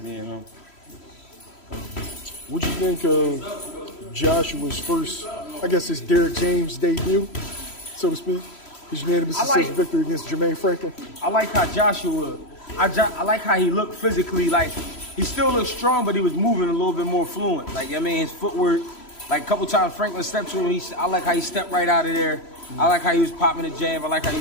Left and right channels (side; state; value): right; late; 3.0 ms